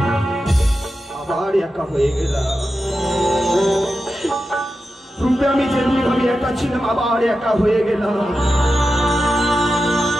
আবার একা হয়ে গেলাম। পূর্বে আমি যেমনি ভাবে একা ছিলাম, আবার একা হয়ে গেলাম।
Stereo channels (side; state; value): both; normal; correlation 0.91